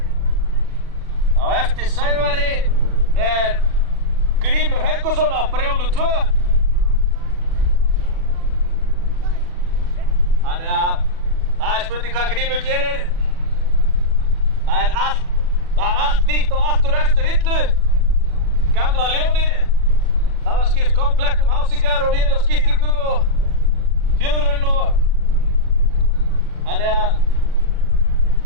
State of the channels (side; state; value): left; late; 40 ms